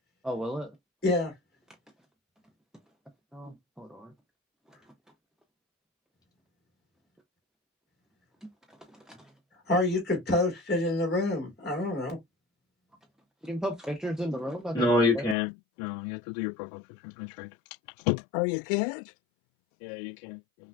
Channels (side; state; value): right; drops out; at 15.4 s